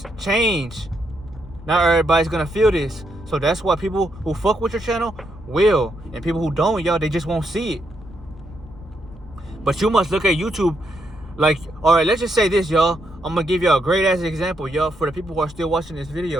change. Not everybody's going to feel this. So that's why people who fuck with your channel will. And people who don't, y'all, they just won't see it. But you must look at YouTube like, all right, let's just say this, y'all. I'm going to give y'all a great ass example, y'all, for the people who are still watching this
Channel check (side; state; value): left; noise; rumble, 20 dB below the sound